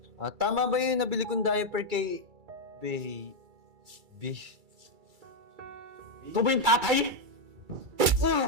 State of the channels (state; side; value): late; left; 2.3 ms